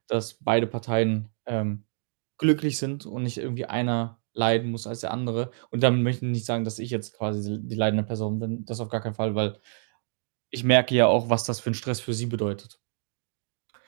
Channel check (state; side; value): silent; left; digital silence